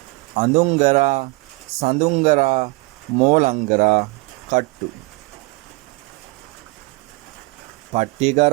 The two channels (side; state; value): left; quieter; 27.2 dB